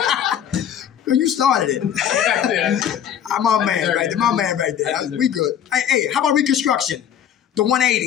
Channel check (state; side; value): quieter; right; 9.4 dB